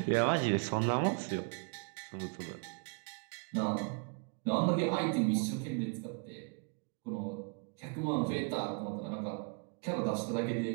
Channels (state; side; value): quieter; left; 37.4 dB